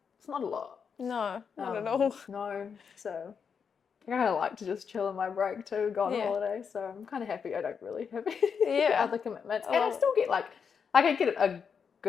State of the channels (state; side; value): quieter; right; 6.5 dB